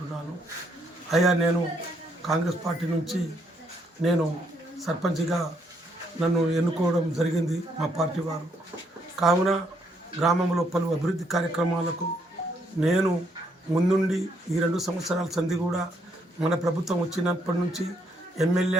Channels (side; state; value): both; normal; correlation 0.72